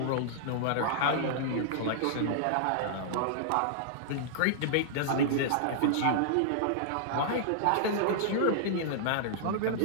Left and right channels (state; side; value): different; both; correlation -0.01